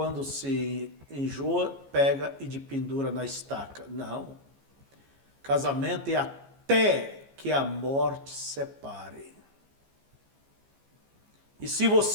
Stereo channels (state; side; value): late; left; 15 ms